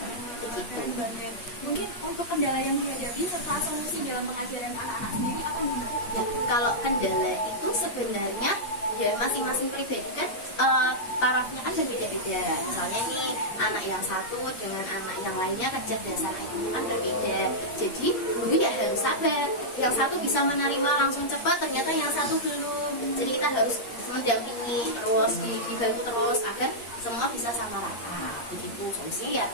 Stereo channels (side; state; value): right; late; 8.5 ms